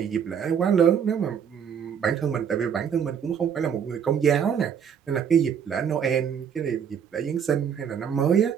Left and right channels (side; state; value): left; quieter; 7.8 dB